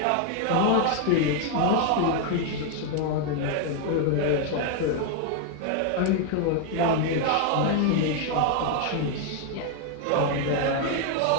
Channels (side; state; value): both; different; correlation 0.00